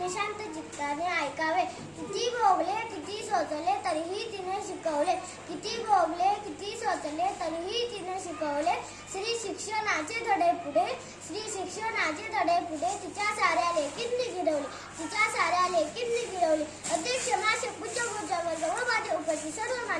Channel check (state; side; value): identical; both; correlation 1.00